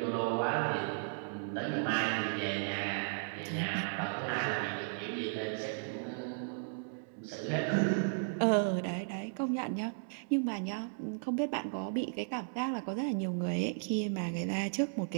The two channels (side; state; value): left; silent; digital silence